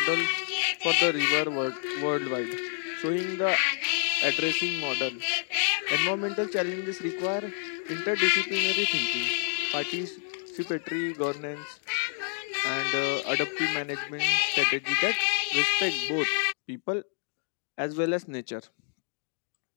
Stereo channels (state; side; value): silent; right; digital silence